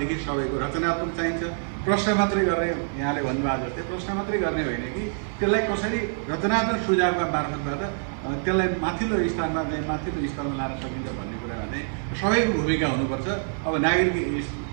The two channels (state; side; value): silent; left; digital silence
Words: सबैको रचनात्मक चाहिन्छ। प्रश्न मात्रै गर्ने, यहाँले भन्नुभएको जस्तै प्रश्न मात्रै गर्ने होइन कि त्यसलाई कसरी रचनात्मक सुझावका मार्फतबाट त्यसलाई माथिल्लो स्तरमा चाहिँ माथिल्लो स्तरमा लान सकिन्छ भन्ने कुरामा चाहिँ सबैको भूमिका हुनुपर्छ। अब